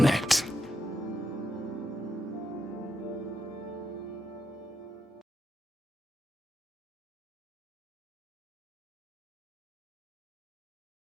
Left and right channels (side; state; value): both; normal; correlation 0.81